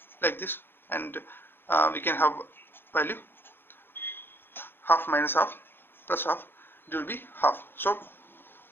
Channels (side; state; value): right; late; 0.10 ms